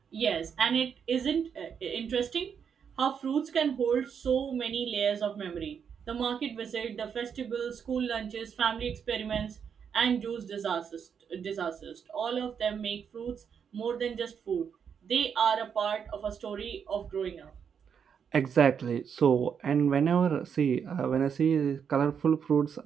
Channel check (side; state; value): left; quieter; 7.2 dB